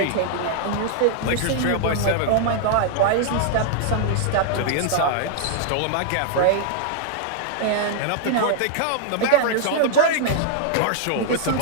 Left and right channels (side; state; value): both; different; correlation -0.01